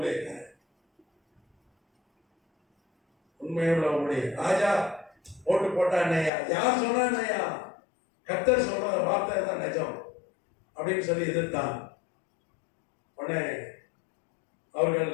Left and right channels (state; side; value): drops out; right; at 6.3 s